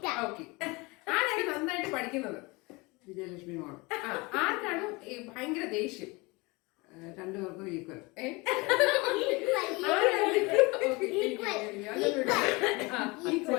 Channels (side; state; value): right; quieter; 25.3 dB